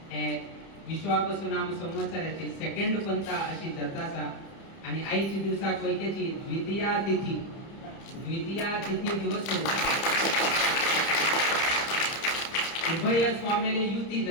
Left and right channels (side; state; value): right; late; 30 ms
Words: हे विश्वावसु नाम संवत्सराची सेकंड पंथा अशी जातासा आणि आईची दिवसाक वैकेची द्वितीया तिथी दिवस उभय स्वामीले युती